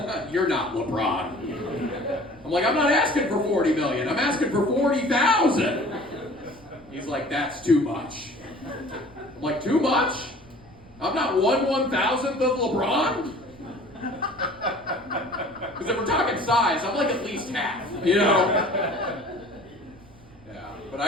you're not LeBron. I'm like, I'm not asking for $40 million. I'm asking for $40,000. He's like, that's too much. I'm like, too much? I'm not 1/1000th of LeBron? Because if we're talking size, I'm like at least half, Yeah. But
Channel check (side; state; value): right; noise; rumble, 24 dB below the sound